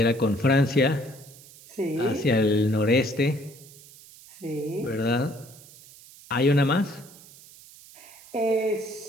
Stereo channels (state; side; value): noise; right; hiss, 21 dB below the sound